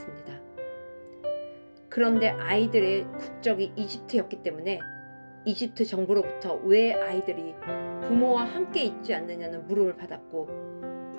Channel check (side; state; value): both; inverted; correlation -1.00